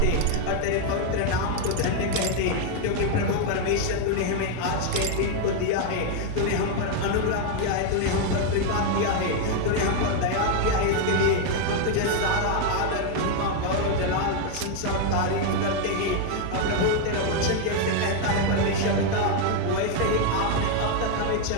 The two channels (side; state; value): both; different; correlation 0.01